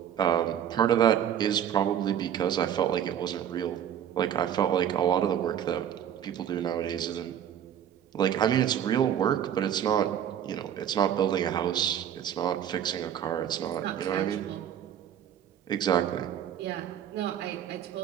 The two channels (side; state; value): left; quieter; 9.7 dB